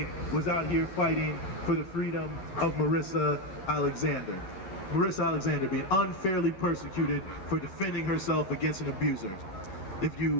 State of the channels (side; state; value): right; late; 11 ms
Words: was out here fighting for the freedom of Marissa Alexander. Marissa Alexander being unfairly persecuted for defending herself against an abuser. If